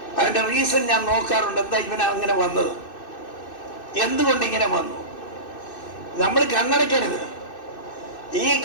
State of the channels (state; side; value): late; right; 2.6 ms